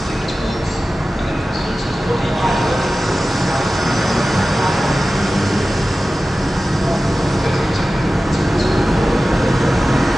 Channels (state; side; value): normal; both; correlation 0.95